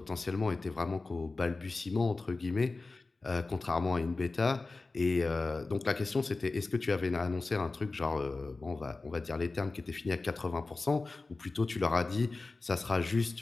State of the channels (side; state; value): right; quieter; 3.6 dB